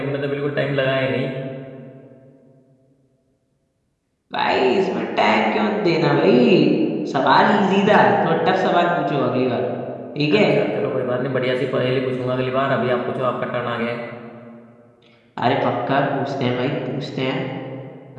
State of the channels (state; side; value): identical; both; correlation 1.00